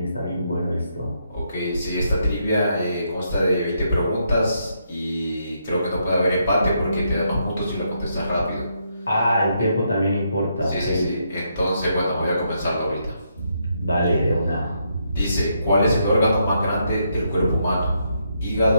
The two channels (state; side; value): inverted; both; correlation -0.77